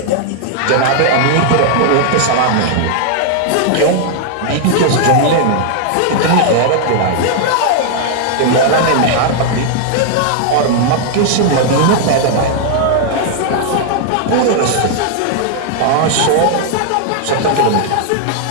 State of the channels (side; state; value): both; different; correlation 0.00